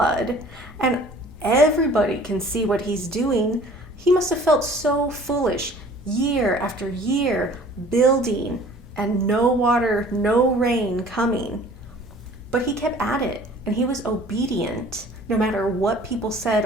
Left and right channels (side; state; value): both; normal; correlation 0.50